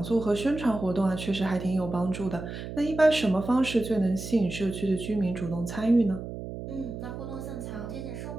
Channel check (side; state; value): right; noise; hum, 8 dB below the sound